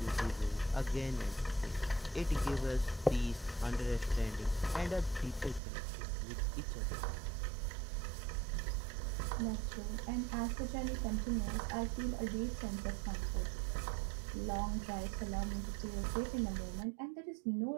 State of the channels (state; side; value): drops out; left; at 5.6 s